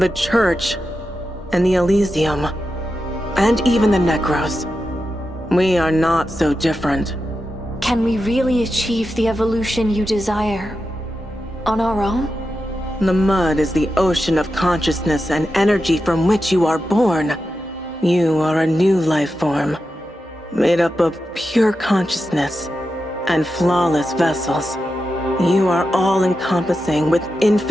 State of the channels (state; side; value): normal; both; correlation 0.89